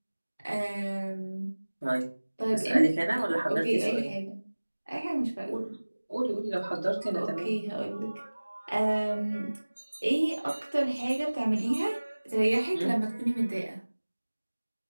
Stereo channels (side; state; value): both; inverted; correlation -1.00